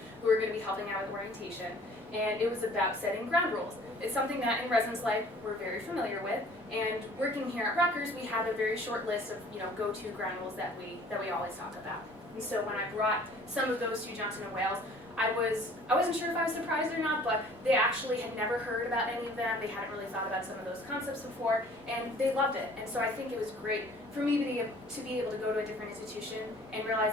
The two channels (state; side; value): normal; both; correlation 0.52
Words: who were going to be helping out with orientation, and it was about setting ground rules. It's something that in Residence Life we're very familiar with, and working here at Rutgers, we have a very short list of go-to ground rules that we always talk about. And so when I brought some of those to Johnson & Wales, I wasn't sure if I was surprised or not, but they actually had never heard about any of them. They hadn't really thought about some of those concepts before, and they loved it. And so I think it was great for me to be able to go to a different institution and